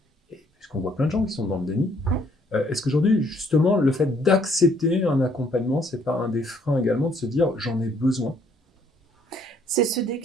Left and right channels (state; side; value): normal; both; correlation 0.65